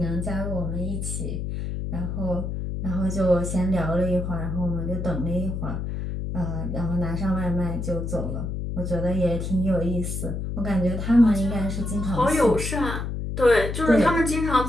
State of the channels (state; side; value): noise; left; hum, 4 dB below the sound